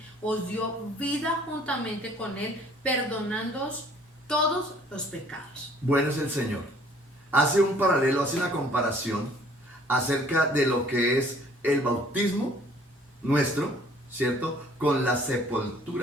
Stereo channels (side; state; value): both; normal; correlation 0.57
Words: os dio vida juntamente con Él, perdonándoos todos los pecados. Bueno es el Señor. Hace un paralelo, hace una comparación acerca de lo que es el bautismo nuestro, ¿cierto? Con la